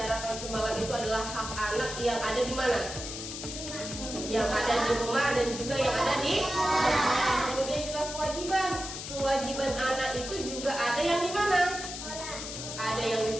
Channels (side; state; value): left; noise; hiss, 8 dB below the sound